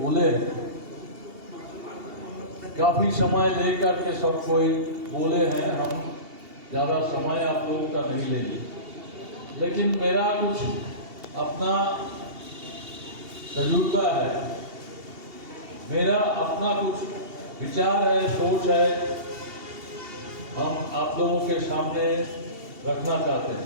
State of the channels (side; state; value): left; late; 2.8 ms